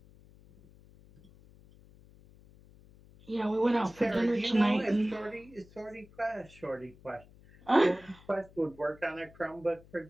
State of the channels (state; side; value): noise; left; hum, 24 dB below the sound